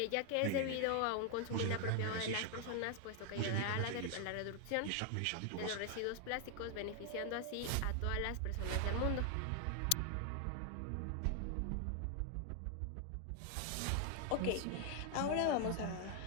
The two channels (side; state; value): both; different; correlation 0.00